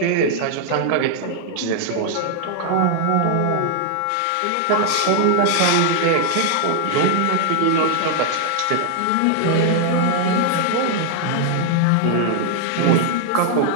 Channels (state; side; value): different; both; correlation 0.00